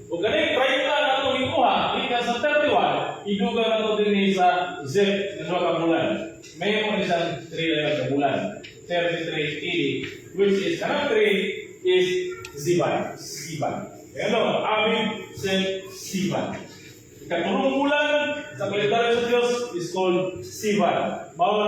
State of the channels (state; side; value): identical; both; correlation 1.00